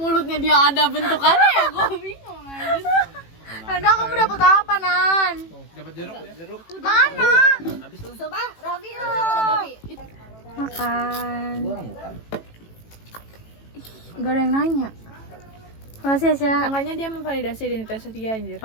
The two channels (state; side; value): late; right; 18 ms